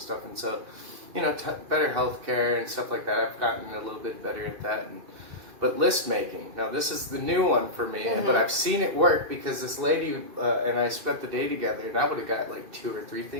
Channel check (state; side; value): late; left; 2.5 ms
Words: stuff. And so, better healthcare and stuff like that. I've gotten a little bit better at that. But list making, now this is the new one for me, but I've seen it work because this lady and I spent the day together, and I would have got like 2 or 3